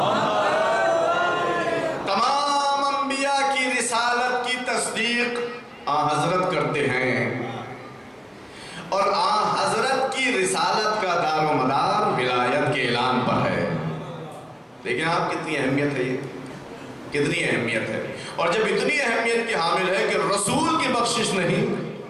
تمام انبیاء کی رسالت کی تصدیق حضرت کرتے ہیں، اور حضرت کی رسالت کا دار و مدار ولایت کے اعلان پر ہے۔ لیکن آپ کتنی اہمیت ہے، یہ کتنی اہمیت ہے، اور جب اتنی اہمیت کی حامل ہے کہ رسول کی بخشش نہیں،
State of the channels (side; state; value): both; identical; correlation 1.00